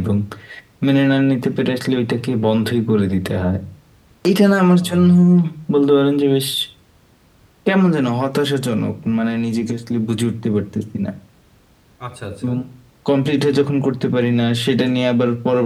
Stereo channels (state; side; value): identical; both; correlation 1.00